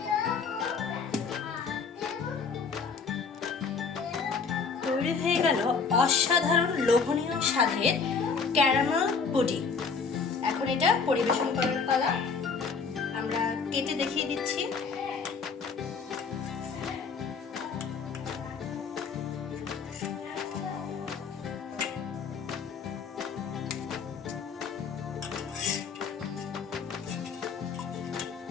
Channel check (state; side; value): quieter; right; 5.3 dB